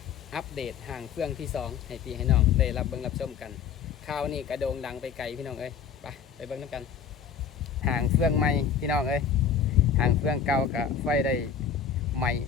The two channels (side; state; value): right; quieter; 7.1 dB